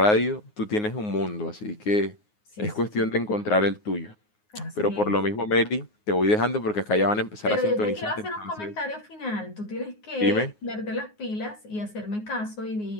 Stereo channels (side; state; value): right; late; 9.5 ms